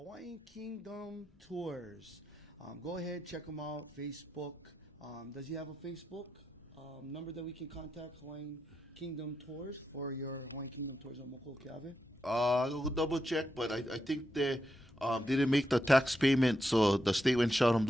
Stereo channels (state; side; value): normal; both; correlation 0.85